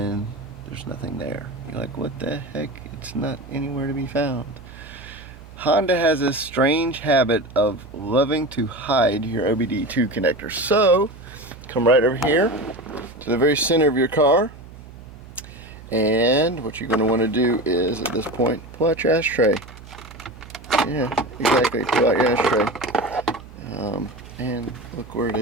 there's nothing there. You're like, what the heck? It's not anywhere to be found. Honda has a strange habit of loving to hide your OBDII connector. So come right over here to the very center of your car. And what you're going to want to do is, at this point, pull out your ashtray. Yeah, exactly. Pull out your ashtray. And look where it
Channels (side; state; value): right; noise; hum, 18 dB below the sound